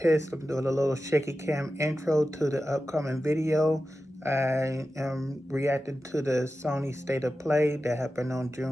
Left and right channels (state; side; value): normal; both; correlation 0.93